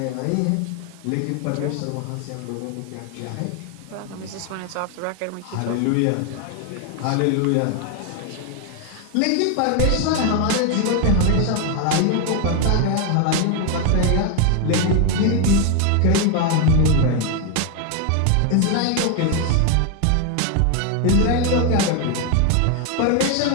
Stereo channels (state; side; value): different; both; correlation 0.01